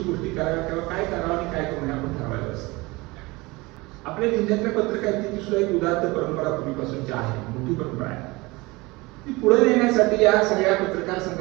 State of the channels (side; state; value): left; quieter; 23.0 dB